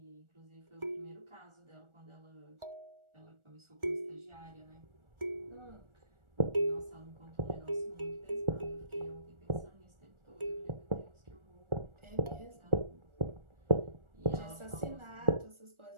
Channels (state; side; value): late; left; 1.4 ms